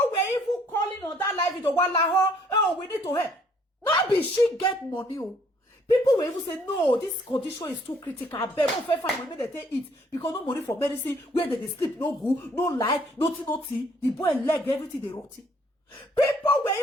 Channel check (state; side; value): normal; both; correlation 0.63